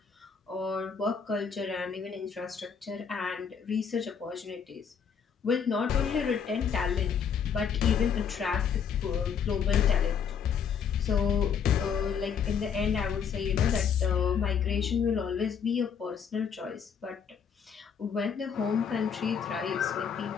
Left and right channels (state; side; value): quieter; right; 7.0 dB